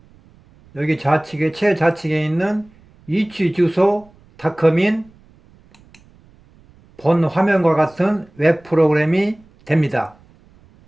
여기 좌측에 최좌측에 있는 위치주소닷컴인 본 화면과 같은 웹 프로그램이 됩니다.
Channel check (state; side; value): noise; right; rumble, 29 dB below the sound